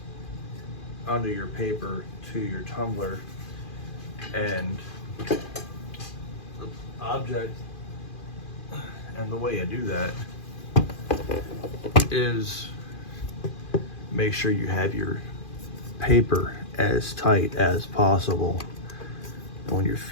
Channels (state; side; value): late; right; 2.4 ms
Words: under your paper to your tumbler. And the object and the way I do that is make sure you have your paper as tight as possible. And when you